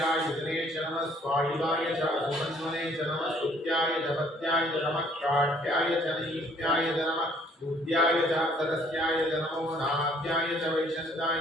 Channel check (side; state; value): both; normal; correlation 0.61